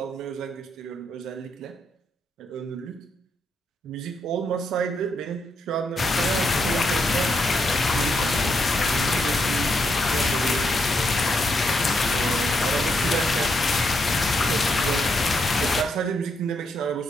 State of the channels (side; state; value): both; normal; correlation 0.79